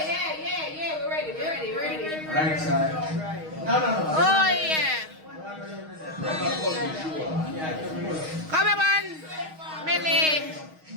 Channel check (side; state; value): left; late; 6.4 ms